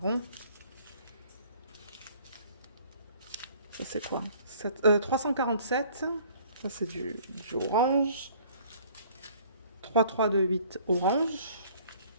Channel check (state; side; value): inverted; both; correlation -0.54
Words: Ça, c'est quoi? 347, ça, c'est du orange. 3328, orange.